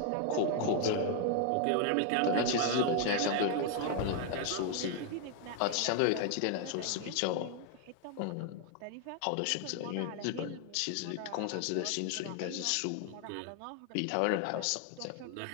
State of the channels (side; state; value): both; different; correlation 0.00